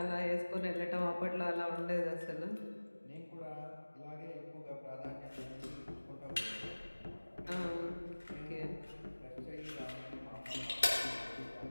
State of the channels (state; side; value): inverted; both; correlation -1.00